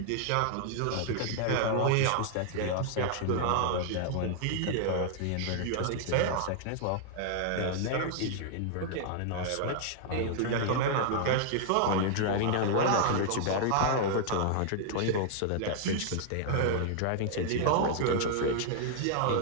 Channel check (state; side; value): different; both; correlation -0.01